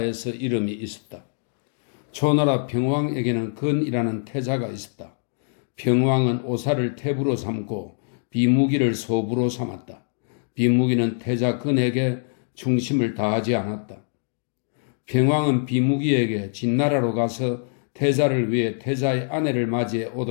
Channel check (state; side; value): silent; right; 63 dB below the other